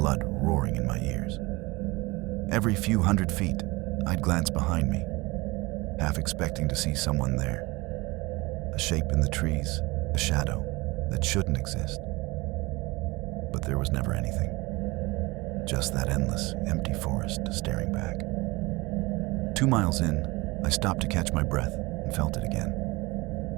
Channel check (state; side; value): quieter; left; 23.0 dB